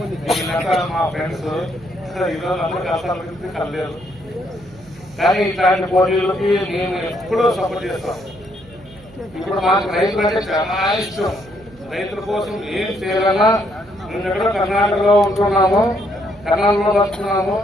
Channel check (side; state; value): right; noise; hum, 24 dB below the sound